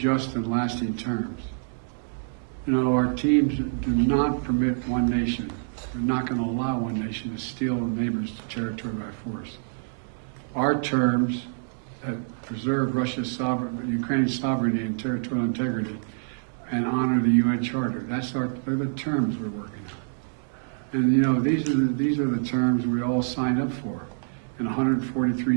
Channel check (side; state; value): left; silent; digital silence